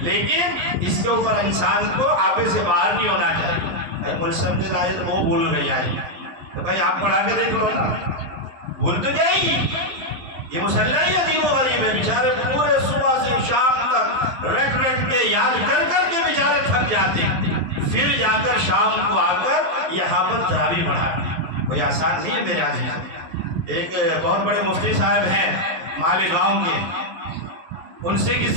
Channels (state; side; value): late; left; 11 ms